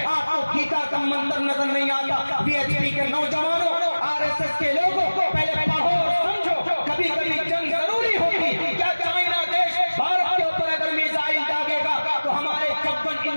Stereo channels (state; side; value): inverted; both; correlation -1.00